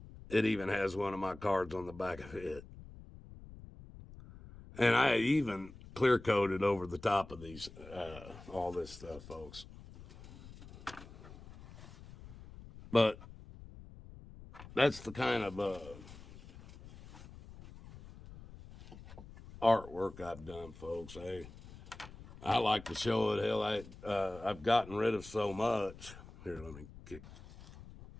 has one of my cards on the back of it. And I even clear coated over the top of these, all this stuff, folks. But that's the kind of artwork I've done, folks. I like to show it. Hell, I've gotten rid of so much. Here, let me kick.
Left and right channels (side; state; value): left; noise; rumble, 17 dB below the sound